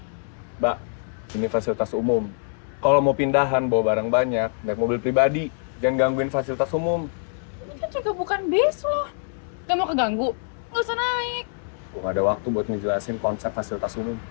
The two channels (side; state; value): right; silent; 61 dB below the other